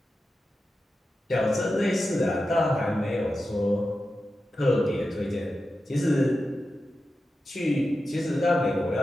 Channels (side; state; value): both; normal; correlation 0.91